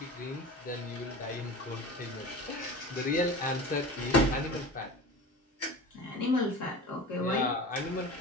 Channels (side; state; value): both; normal; correlation 0.33